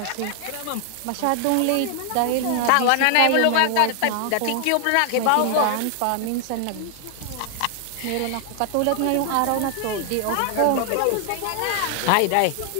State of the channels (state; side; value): different; both; correlation 0.00